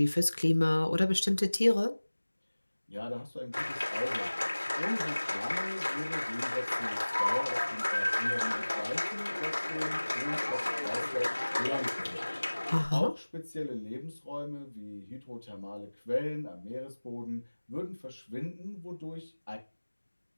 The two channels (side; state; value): both; inverted; correlation -1.00